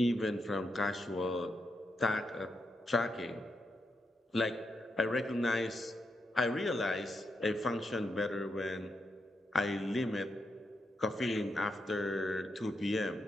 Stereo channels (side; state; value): both; normal; correlation 0.83